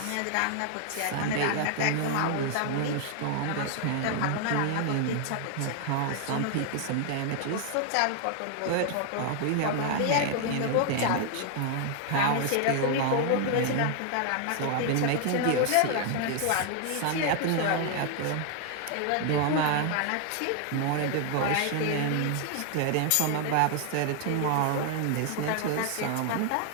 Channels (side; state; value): both; different; correlation 0.00